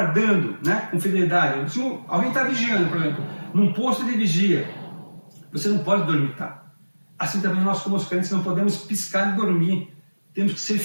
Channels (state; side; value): inverted; both; correlation -1.00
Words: né, com fidelidade. Se alguém está vigiando, por exemplo, num posto de vigia, você não pode dormitar. Assim também nós, como os crentes, não podemos piscar e dormir. Temos que ser